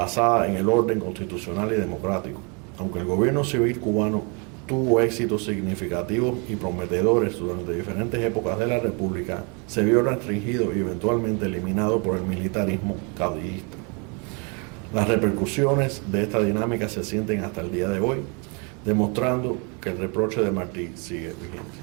en el orden constitucional y democrático. Aunque el gobierno civil cubano tuvo éxitos significativos y prometedores durante diferentes épocas de la República, se vio restringido y eventualmente eliminado por el militarismo caudillista. Las repercusiones de esta dinámica se sienten hasta el día de hoy, demostrando que el reproche de Martí sigue vigente.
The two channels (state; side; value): quieter; left; 33.9 dB